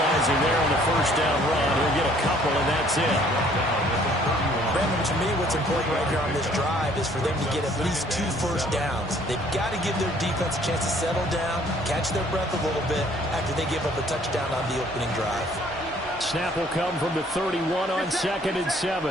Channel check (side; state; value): both; normal; correlation 0.59